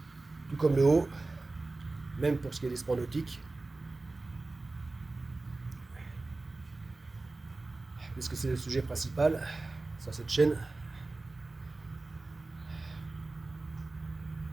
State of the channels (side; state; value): left; quieter; 3.3 dB